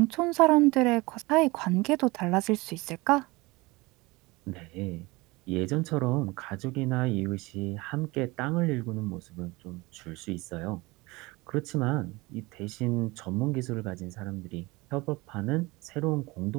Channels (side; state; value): left; quieter; 23.0 dB